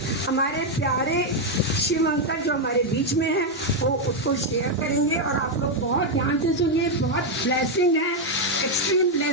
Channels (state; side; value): normal; both; correlation 0.02